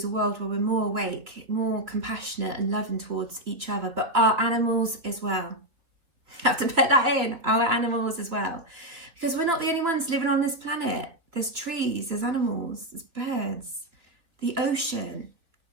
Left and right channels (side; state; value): left; late; 3.2 ms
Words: a world where we're more awake, more compassionate and loving towards each other, but our animals as well. I have to put that in, our animals as well. Because we're not the only ones living on this planet. There's trees, there's animals, there's birds, the ocean.